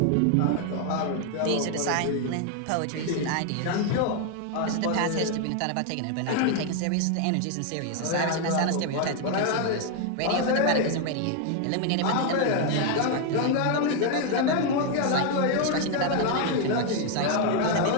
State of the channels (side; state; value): both; different; correlation 0.00